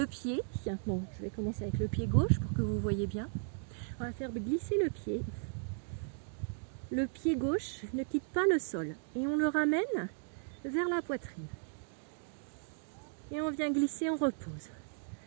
pied. Bon, je vais commencer avec le pied gauche pour que vous voyez bien. On va faire glisser le pied. Le pied gauche ne quitte pas le sol et on le ramène vers la poitrine. Et on vient glisser, on repose.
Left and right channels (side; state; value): left; silent; digital silence